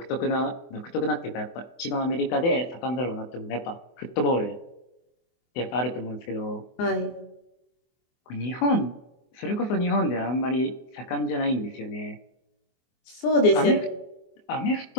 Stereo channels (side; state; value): right; late; 24 ms